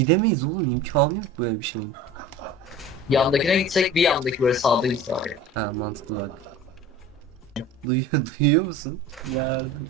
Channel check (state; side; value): normal; both; correlation 0.38